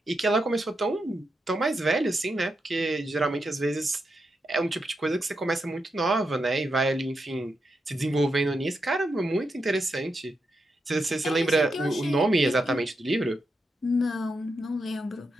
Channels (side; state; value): both; normal; correlation 0.85